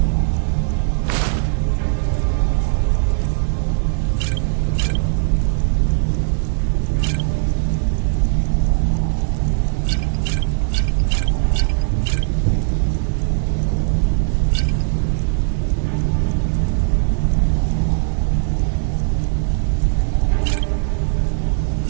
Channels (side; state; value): left; silent; 67 dB below the other